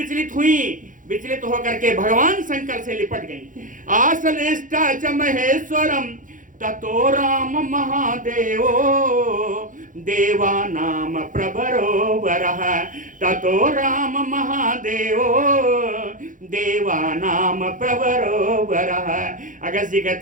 हुई, विचलित होकर के भगवान शंकर से लिपट गई। आसलिष्टा च महेश्वरम ततो राम महादेवो देवानाम प्रभरो वरः, ततो राम महादेवो देवानाम प्रभरो वरः। अगस्त जी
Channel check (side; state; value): left; late; 0.38 ms